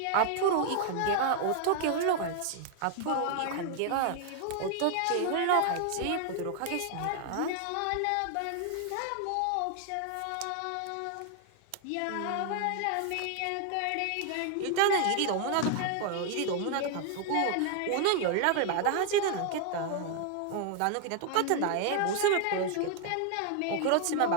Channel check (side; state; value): both; different; correlation 0.00